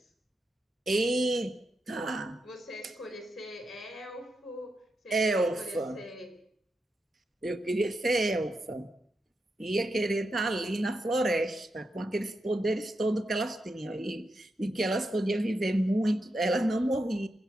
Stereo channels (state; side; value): normal; both; correlation 0.86